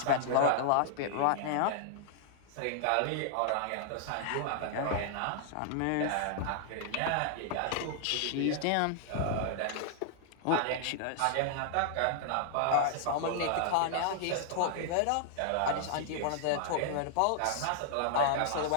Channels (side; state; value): both; different; correlation 0.00